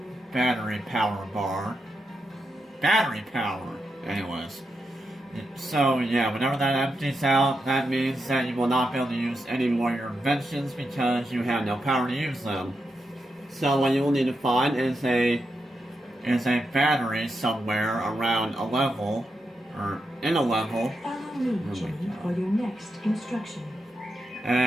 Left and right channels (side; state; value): both; normal; correlation 0.86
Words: battery power bar. Battery power! Anyways. So yeah, whenever that empties out, that means that you will not be able to use any more of your inventions because you have no power to use them. So what you will need to find is a battery somewhere around a level, or in a level. Follow me, Jimmy, for your next instruction.